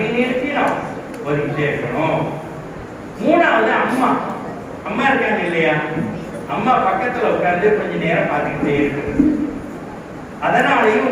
நினைச்சு நாம் ஓதிக்கிட்டே இருக்கணும். மூணாவது அம்மா இருக்காங்க இல்லையா, அம்மா பக்கத்துல உட்கார்ந்து கொஞ்ச நேரம் பார்த்துக்கிட்டே இருக்கு. அதனாலேயும்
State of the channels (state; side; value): identical; both; correlation 1.00